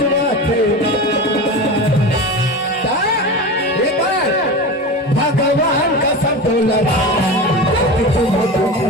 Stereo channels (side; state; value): both; normal; correlation 0.27